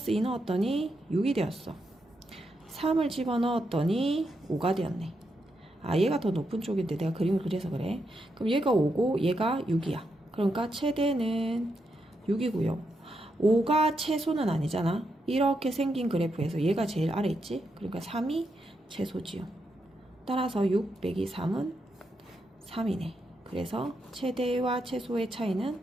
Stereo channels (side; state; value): both; normal; correlation 0.83